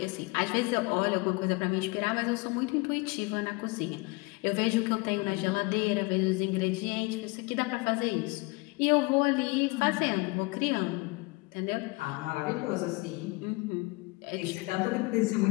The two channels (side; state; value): right; quieter; 26.0 dB